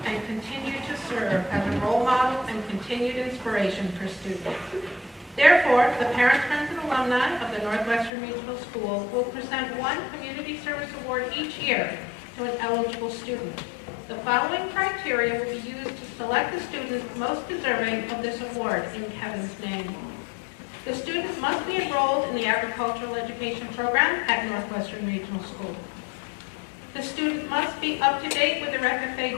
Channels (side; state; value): right; drops out; at 8.1 s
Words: and continue to serve as a role model and continued inspiration for students. Therefore, the parents, friends, and alumni of the Northwestern Regional School will present one Community Service Award each year to an eligible student. The following criteria will be used to select the student most deserving of this award in Kevin's name. The student must be enrolled in the agricultural education program at Northwestern Regional School. The student must be up to date with their FFA